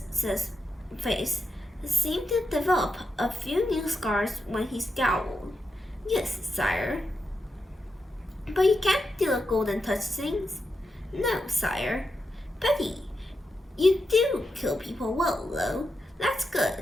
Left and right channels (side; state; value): both; normal; correlation 0.86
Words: face seemed to develop a few new scars when he scowled. Yes, sire. But you can't do the golden touch things. No, sire. Betty, you do kill people well, though. That's